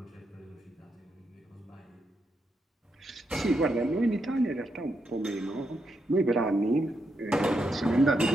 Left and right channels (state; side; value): normal; both; correlation 0.82